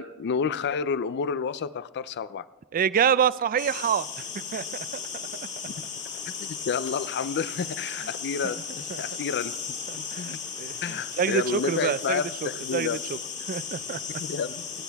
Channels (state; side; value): normal; both; correlation -0.07